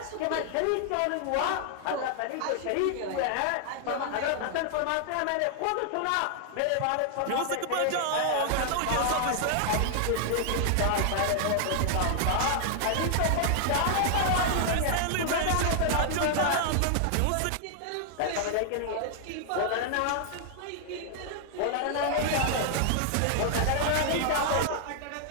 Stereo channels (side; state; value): both; different; correlation 0.00